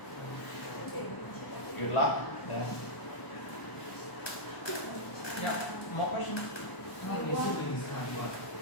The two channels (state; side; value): late; right; 1.0 ms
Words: Good luck then. Yeah, more questions? How many siblings have you got?